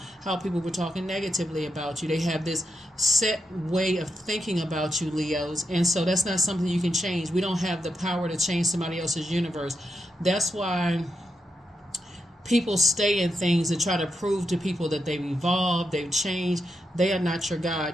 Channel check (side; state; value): both; normal; correlation 0.84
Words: how people were talking negatively about you. They have this set way of thinking about you, Leos, and so that's not something you can change. We don't have the power to change somebody else's universe. That's why people stay in things and try to prove to people that they've evolved, they've changed. They are not your